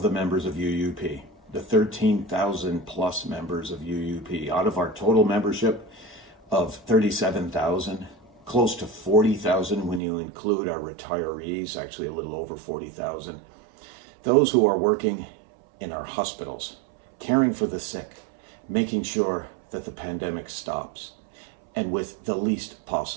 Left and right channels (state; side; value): drops out; left; at 10.0 s